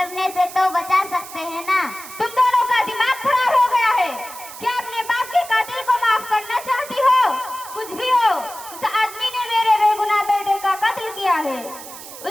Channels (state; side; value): noise; right; hiss, 14 dB below the sound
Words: से तो बचा सकते हैं ना। तुम दोनों का दिमाग खराब हो गया है। क्या अपने बाप के कातिल को माफ करना चाहती हो? कुछ भी हो, उस आदमी ने मेरे बेगुनाह बेटे का कत्ल किया है।